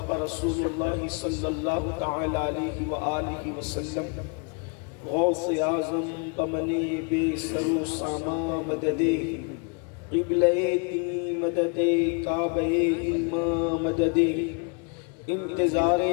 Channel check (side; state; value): right; quieter; 35.0 dB